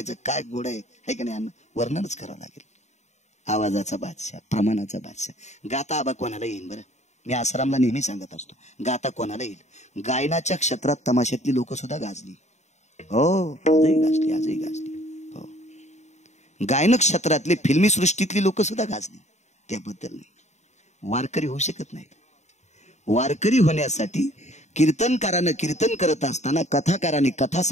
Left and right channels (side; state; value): right; late; 0.33 ms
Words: काय घोडं आहे का नाही, वर्णनच करावं लागेल. आवाजाचा बादशाह, प्रमाणाचा बादशाह. गाता आबा कोणाला येईल बरं, मी आसारामला नेहमी सांगत असतो, गाता कोणाला येईल. गायनाच्या क्षेत्रात तमाशातली लोक सुद्धा गाजली. हो, आजही गाजली. हो, गायन क्षेत्रातली फिल्मी सृष्टीतली लोक सुद्धा गाजली, त्याबद्दल नाही. वारकरी होऊ शकत नाहीत. वारकरी होण्यासाठी कीर्तनकारानं कीर्तन करत असताना, कथाकाराने कथा